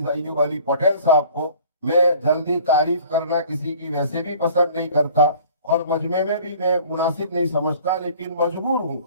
ایوب علی پٹیل صاحب کو۔ میں جلدی تعریف کرنا کسی کی ویسے بھی پسند نہیں کرتا اور مجمع میں بھی میں مناسب نہیں سمجھتا، لیکن مجبور ہوں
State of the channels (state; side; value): inverted; both; correlation -0.50